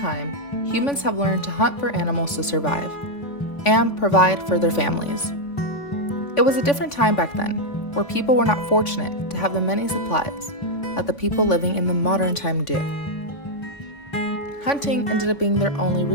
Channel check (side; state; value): right; late; 3.5 ms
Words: humans have learned to hunt for animals to survive and provide for their families. It was a different time back then, where people were not fortunate to have the many supplies that the people living in the modern time do. Hunting ended up being their only